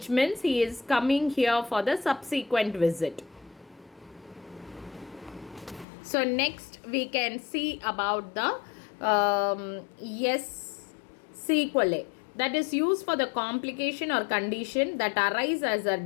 means he is coming here for the subsequent visit. So next we can see about the sequelae, that is used for the complication or condition that arise as a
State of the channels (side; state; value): right; drops out; at 5.9 s